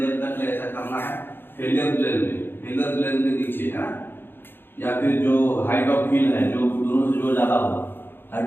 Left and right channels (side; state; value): right; late; 0.10 ms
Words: तक ऐसा करना है फेलियर प्लेन के नीचे, है ना। या फिर जो हाइट ऑफ फिल है, जो दोनों से जो ज्यादा हो,